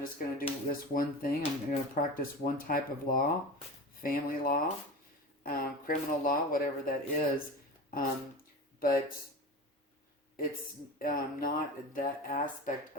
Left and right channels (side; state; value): both; normal; correlation 0.30